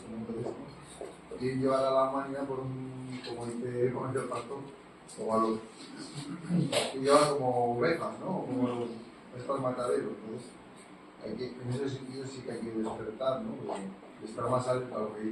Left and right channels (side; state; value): both; identical; correlation 1.00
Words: ¿no? Entonces, quieren llevar a la humanidad por un, como dice el pastor, como a los que llevan como ovejas, ¿no? Como estos mataderos. Entonces, en ese sentido sí que hay que despertar, ¿no? De estar más alerta a lo que